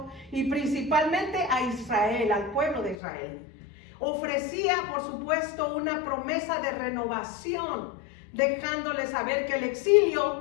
y principalmente a Israel, al pueblo de Israel. Ofrecía, por supuesto, una promesa de renovación, dejándole saber que el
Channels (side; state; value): right; drops out; at 3.0 s